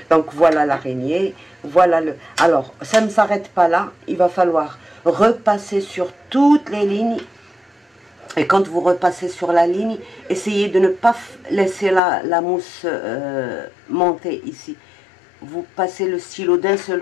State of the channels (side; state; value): right; drops out; at 12.0 s